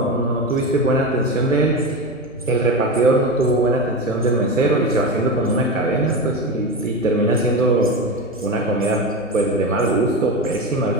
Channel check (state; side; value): normal; both; correlation 0.20